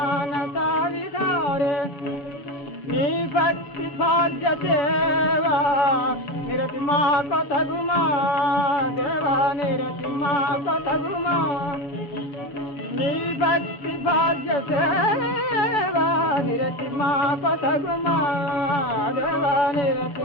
విహారే నీ భక్తి భాగ్య సేవా నిరతి మా కొతగుమా దేవా నిరతి మా కొతగుమా నీ భక్తి భాగ్య సేవా నిరతి మా కొతగుమా దేవా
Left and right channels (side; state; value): right; late; 7.1 ms